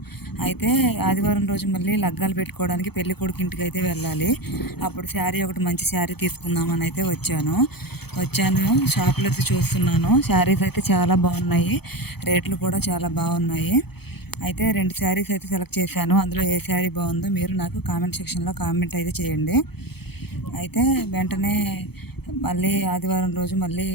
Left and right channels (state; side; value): late; right; 0.97 ms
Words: అయితే ఆదివారం రోజు మళ్ళీ లగ్గాలు పెట్టుకోవడానికి పెళ్లి కొడుకు ఇంటికి అయితే వెళ్ళాలి. అప్పుడు శారీ ఒకటి మంచి శారీ తీసుకుందామని అయితే వచ్చాను. షాప్లో అయితే చూస్తున్నాను. శారీస్ అయితే చాలా బాగున్నాయి. రేట్లు కూడా చాలా బాగున్నాయి. అయితే 2 శారీస్ అయితే సెలెక్ట్ చేశాను. అందులో ఏ శారీ బాగుందో మీరు నాకు కామెంట్ సెక్షన్లో కామెంట్ అయితే చేయండి. అయితే వెంటనే మళ్ళీ ఆదివారం రోజు మళ్ళీ